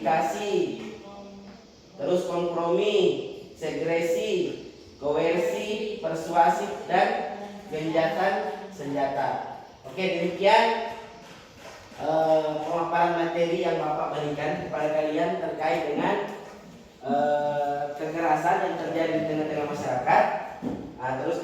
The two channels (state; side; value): identical; both; correlation 1.00